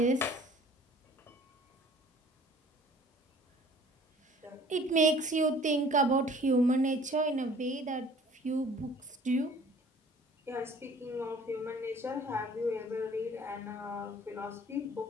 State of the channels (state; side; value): normal; both; correlation 0.51